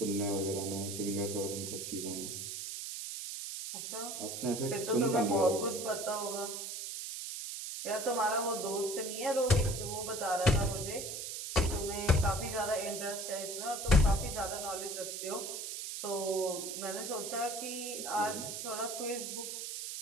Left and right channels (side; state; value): right; noise; hiss, 6 dB below the sound